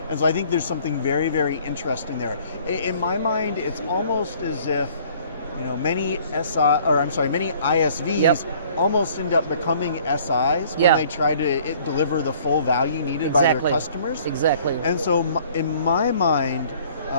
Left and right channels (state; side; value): inverted; both; correlation -0.56